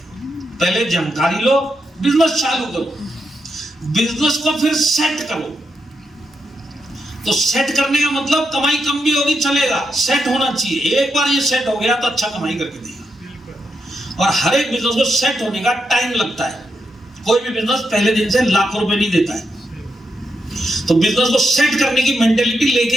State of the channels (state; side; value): normal; both; correlation 0.84